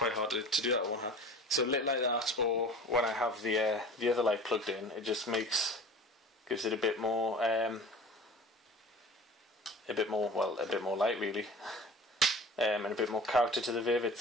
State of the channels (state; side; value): normal; both; correlation 0.40